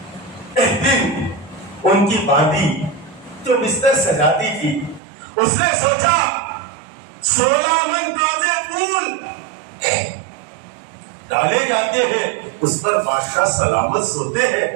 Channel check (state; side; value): drops out; left; at 5.0 s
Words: ایک دن ان کی باندھی جو بستر سجاتی تھی, اس نے سوچا 16 من تازے پھول ڈالے جاتے ہیں, اس پر بادشاہ سلامت سوتے